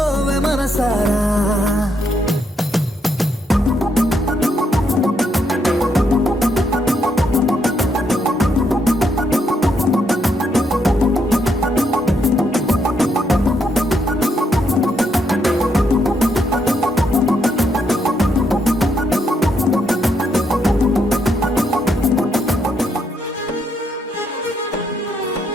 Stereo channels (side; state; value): both; normal; correlation 0.76